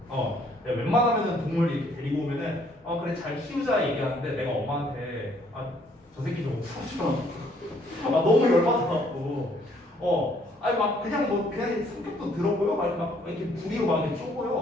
내가 웬만하면은 동물 이렇게 데리고 오면은 그래 잘 키우자 얘기하는데 내가 엄마한테 저 새끼 좀 풀어줘. 너무 열받아갖고 아니 막 그냥 성격도 더럽고요, 막 이렇게 부리로 막 이렇게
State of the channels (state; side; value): normal; both; correlation 0.65